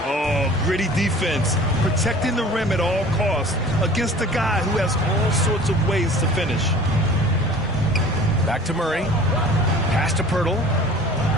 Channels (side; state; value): both; normal; correlation 0.45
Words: Oh, gritty defense, protecting the rim at all costs against a guy who has all sorts of ways to finish. Back to Murray. Pass to Pirtle.